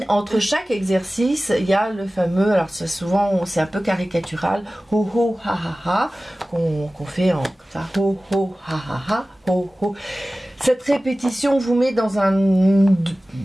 Entre chaque exercice, il y a le fameux, alors souvent c'est un peu caricatural, ho ho ha ha ha, qu'on fait en ça, ho ho ha ha ha, ho ho. Cette répétition vous met dans une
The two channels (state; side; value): normal; both; correlation 0.97